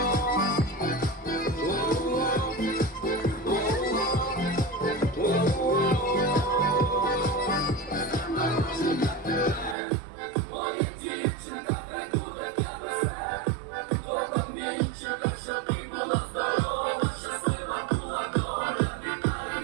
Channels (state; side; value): drops out; left; at 9.8 s